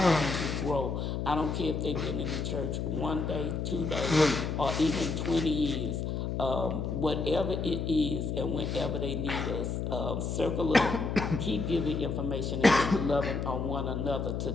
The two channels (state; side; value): noise; left; hum, 2 dB below the sound